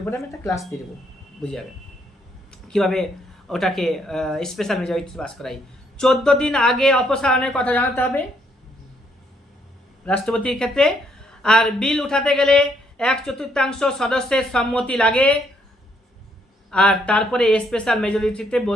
উপরে আমি একটা ক্লাস দিয়ে দেবো, বুঝে যাবে কীভাবে ওটাকে স্পেশাল মেজরিটি পাস করাই। 14 দিন আগে অপসারণের কথা জানাতে হবে রাষ্ট্রপতির ক্ষেত্রে। আর বিল উঠাতে গেলে 1/4 সদস্যের সম্মতি লাগে, আর তারপরে স্পেশাল মেজরিটিতে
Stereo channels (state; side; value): normal; both; correlation 0.71